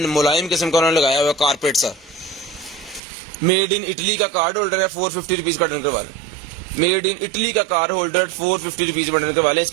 किस्म का उन्होंने लगाया हुआ है, कारपेट सा। मेड इन इटली का कार्ड होल्डर है, 450 रुपीज़ का डन करवा लें। मेड इन इटली का कार्ड होल्डर 450 रुपीज़ में डन करवा लें।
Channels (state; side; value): drops out; left; at 3.0 s